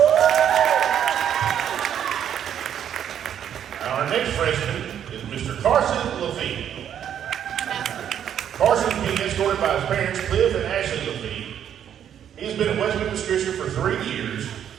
Our next freshman is Mr. Carson Lafitte. Carson is being escorted by his parents, Cliff and Ashley Lafitte. He has been at West Memphis Christian for 3 years.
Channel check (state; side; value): quieter; left; 9.5 dB